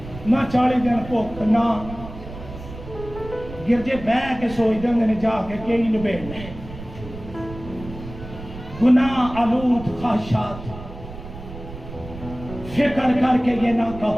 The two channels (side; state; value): right; noise; rumble, 13 dB below the sound